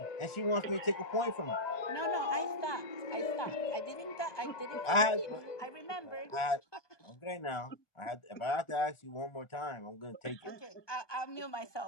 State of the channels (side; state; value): right; late; 1.4 ms